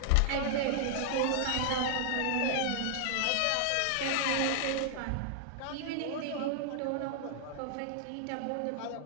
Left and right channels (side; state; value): both; different; correlation -0.01